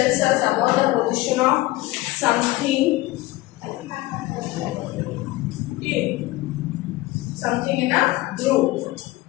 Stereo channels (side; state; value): right; quieter; 18.7 dB